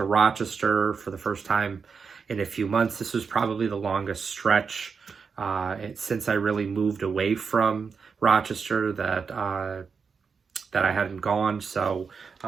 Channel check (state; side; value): quieter; left; 5.6 dB